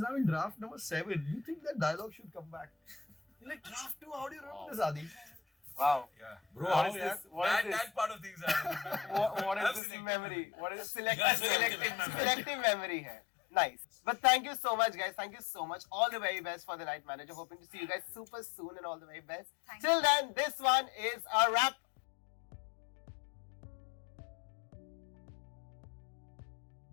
now in draft number 7. You think that dialogue should come back? You're like, draft 2, how do you remember this, Adi? Wow. Yeah. Bro, What is this? What is this? That part of things are. What is this Absolutely. memory? What is Selective selective memory hai. Nice. But thank you so much, guys. Thank you so much. All the very best for the Night Manager. Hoping to see you guys super soon and all the very best. Thank Till then, this one is a wrap.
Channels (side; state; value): right; drops out; at 9.8 s